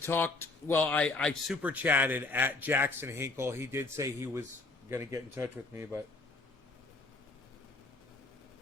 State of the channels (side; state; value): right; quieter; 3.3 dB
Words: super chatted at Jackson Hinkle. He did say he was going to get in touch with me, but